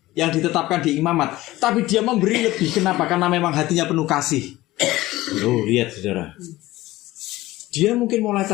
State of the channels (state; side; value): quieter; right; 17.5 dB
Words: yang ditetapkan di imamat, tapi dia memberi lebih. Kenapa? Karena memang hatinya penuh kasih. Oh, lihat saudara, dia mungkin mulai